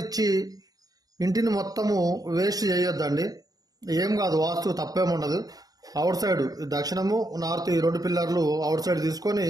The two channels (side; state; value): left; late; 0.18 ms